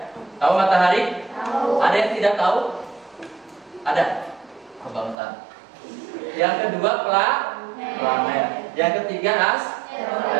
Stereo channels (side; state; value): left; drops out; at 5.2 s